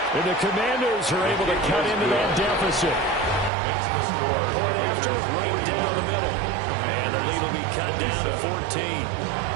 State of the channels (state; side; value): drops out; left; at 3.5 s